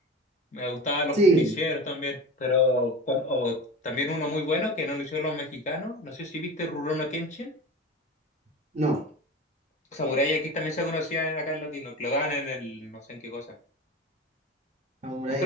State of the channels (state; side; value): normal; both; correlation 0.32